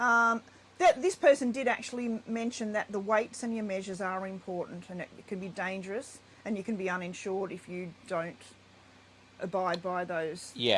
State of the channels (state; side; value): identical; both; correlation 1.00